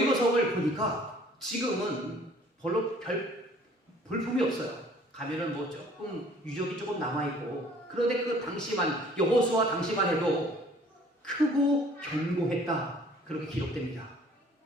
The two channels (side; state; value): both; normal; correlation 0.54